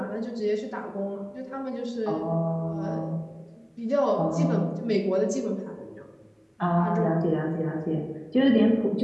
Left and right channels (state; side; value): identical; both; correlation 1.00